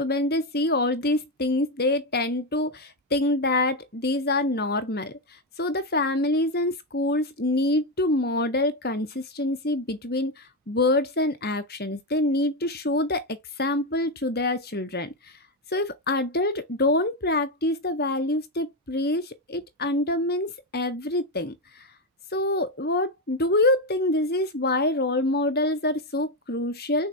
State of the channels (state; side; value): normal; both; correlation 0.09